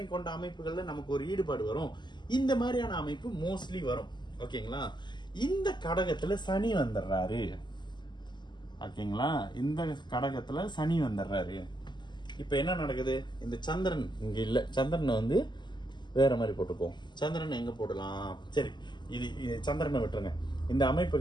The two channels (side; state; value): right; late; 0.21 ms